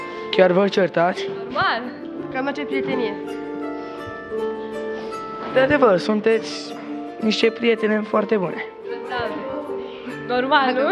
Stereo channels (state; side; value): identical; both; correlation 1.00